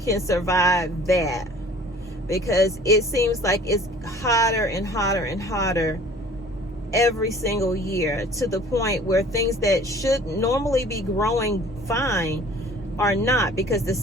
survive that, because it seems like it's hotter and hotter and hotter every single year, to the point where things that should normally be growing fine are not, because the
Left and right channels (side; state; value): both; normal; correlation 0.49